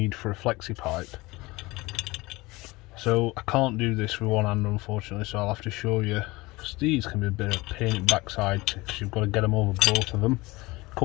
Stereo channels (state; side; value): quieter; right; 21.8 dB